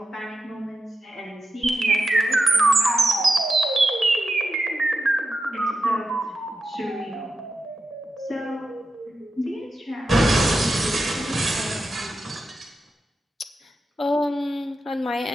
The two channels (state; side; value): normal; both; correlation 0.87